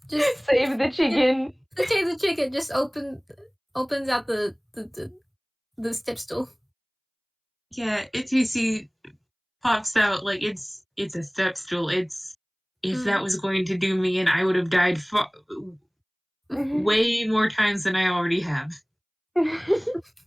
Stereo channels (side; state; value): both; identical; correlation 1.00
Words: save the chicken. Save the chicken. Just opens out the step stool. Yeah, TUC pops out like it's a step stool. If that was going to do me, and I would have died way more times than I already have. But